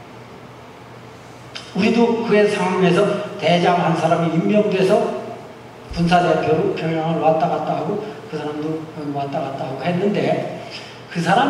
우리도 그의 상황에서 대장 한 사람이 임명돼서 군사대표로 평양을 왔다 갔다 하고 그 사람도 왔다 갔다 하고 했는데, 그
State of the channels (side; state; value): both; identical; correlation 1.00